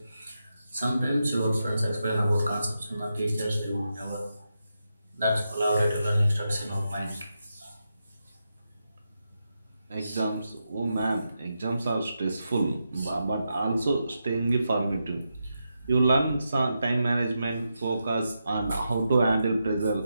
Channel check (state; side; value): inverted; both; correlation -0.87